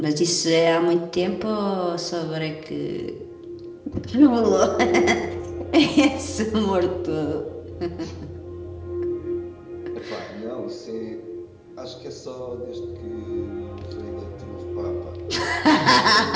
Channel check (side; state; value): both; identical; correlation 1.00